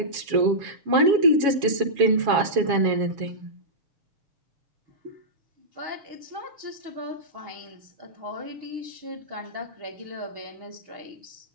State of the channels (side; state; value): left; late; 7.2 ms